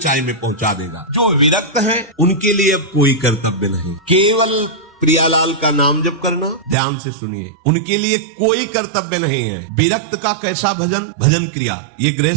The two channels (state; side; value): drops out; left; at 6.8 s